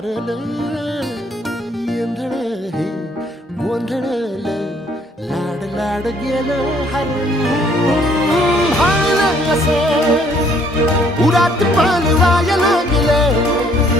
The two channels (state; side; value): normal; both; correlation 0.63